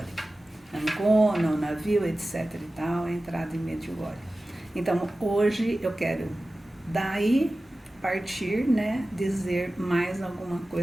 Ancona, o navio, etc e tal, a entrada em Medjugorje. Então hoje eu quero daí partir, né, dizer mais alguma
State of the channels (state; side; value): normal; both; correlation 0.96